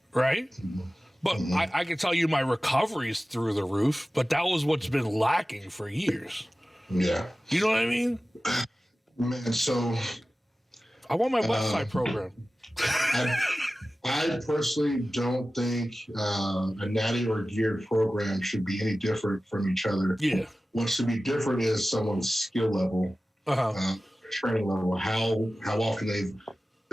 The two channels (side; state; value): both; normal; correlation 0.96